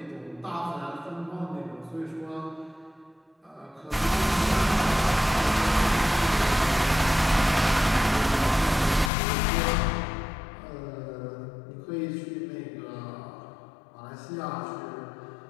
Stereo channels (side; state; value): right; drops out; at 9.1 s